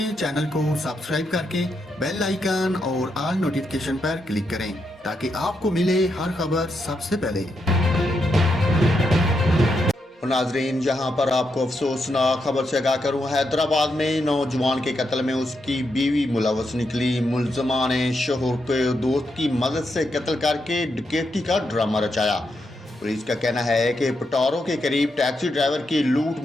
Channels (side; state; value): both; normal; correlation 0.82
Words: چینل کو سبسکرائب کر کے بیل آئیکن اور آل نوٹیفیکیشن پر کلک کریں تاکہ آپ کو ملے ہر خبر سب سے پہلے۔ ناظرین، جہاں پر آپ کو افسوسناک خبر سے آگاہ کروں، حیدرآباد میں نوجوان کے قتل میں اس کی بیوی ملوث نکلی۔ ملزمہ نے شوہر کو دوست کی مدد سے قتل کر کے ڈکیتی کا ڈرامہ رچایا۔ پولیس کا کہنا ہے کہ پٹورو کے قریب ٹیکسی ڈرائیور کی لوٹ